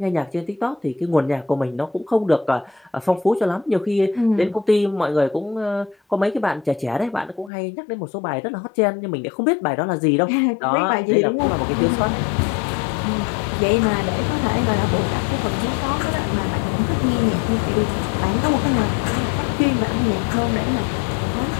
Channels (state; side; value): drops out; right; at 7.5 s